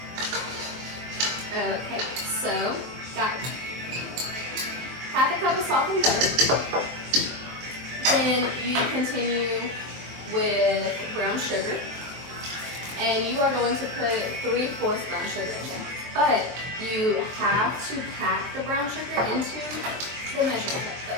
Okay, so got half a cup of softened butter. Then you continue with brown sugar, and you are going to put 3/4 brown sugar in there. But you have to pack the brown sugar into the measuring cup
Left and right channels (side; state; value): left; late; 23 ms